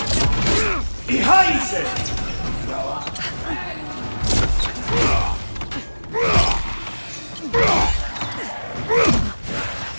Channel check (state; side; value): inverted; both; correlation -1.00